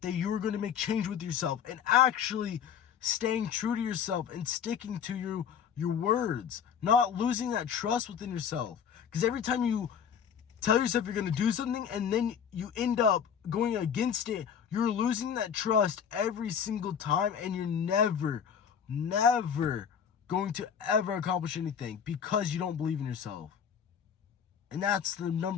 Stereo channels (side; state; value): right; quieter; 7.8 dB